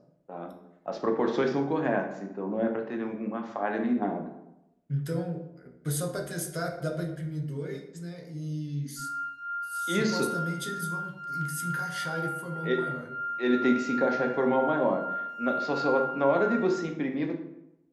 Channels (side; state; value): both; identical; correlation 1.00